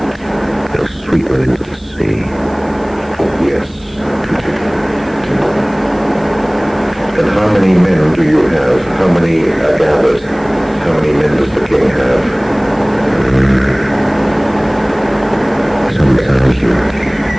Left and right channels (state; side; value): noise; right; hiss, 29 dB below the sound